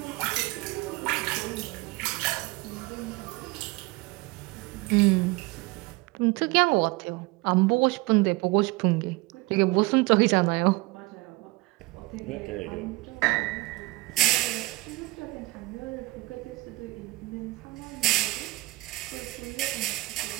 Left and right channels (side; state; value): left; quieter; 21.5 dB